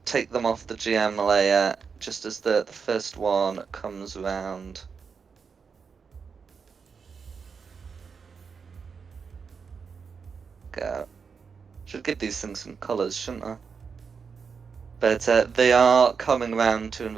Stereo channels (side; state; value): left; quieter; 5.7 dB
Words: take them off the GM layer just as the first one comes around. Go. Should give these things some colours, shouldn't I? But they are coming around to